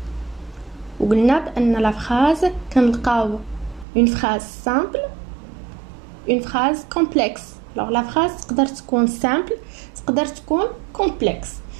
وقلنا بأن la phrase كنلقاو une phrase simple, une phrase complexe. Alors la phrase تقدر تكون simple, تقدر تكون complexe.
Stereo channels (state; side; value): drops out; left; at 3.9 s